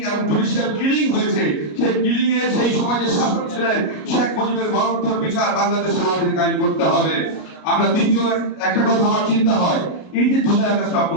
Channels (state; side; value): late; right; 33 ms